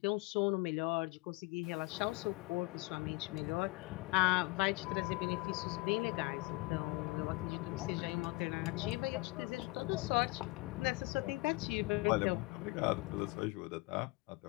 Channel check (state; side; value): quieter; right; 23.9 dB